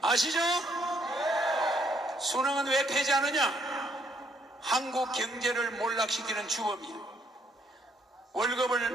아시죠? 수능은 왜 폐지하느냐? 한국 경제를 몰락시키는 주범이에요.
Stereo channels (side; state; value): both; normal; correlation 0.69